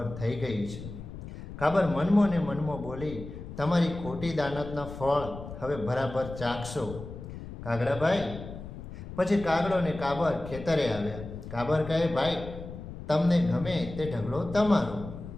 થઈ ગઈ છે. કાબર મનમો ને મનમો બોલી, તમારી ખોટી દાનતના ફળ હવે બરાબર ચાખશો. કાગડાભાઈ પછી કાગડો ને કાબર ખેતરે આવ્યા. કાબર કહે, ભાઈ, તમને ગમે તે ઢગલો તમારો.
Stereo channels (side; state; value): left; noise; rumble, 11 dB below the sound